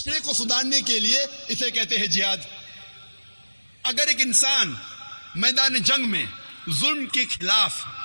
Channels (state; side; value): inverted; both; correlation -1.00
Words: کو سدھارنے کے لیے، اسے کہتے ہیں جہاد۔ اگر ایک انسان میدان جنگ میں ظلم کے خلاف